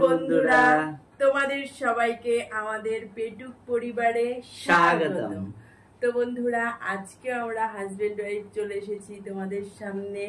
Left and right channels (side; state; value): both; identical; correlation 1.00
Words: বন্ধুরা, তোমাদের সবাইকে আমাদের পেটুক পরিবারে স্বাগতম। তো বন্ধুরা, আজকে আমরা হাজবেন্ড ওয়াইফ চলে এসেছি তোমাদের সামনে